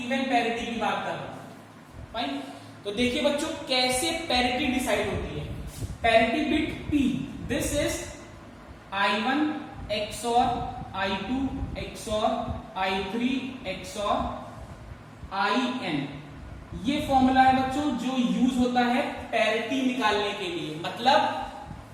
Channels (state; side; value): identical; both; correlation 1.00